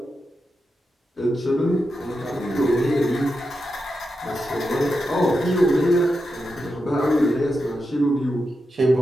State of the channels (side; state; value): both; normal; correlation 0.88